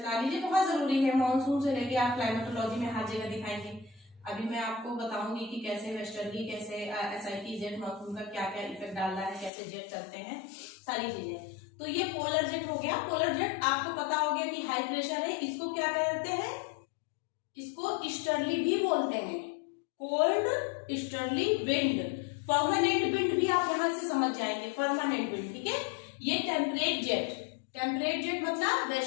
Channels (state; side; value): drops out; right; at 9.5 s